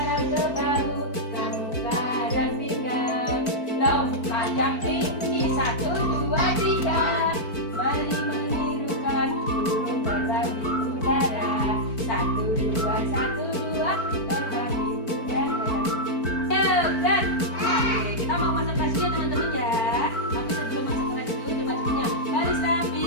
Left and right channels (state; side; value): late; right; 4.5 ms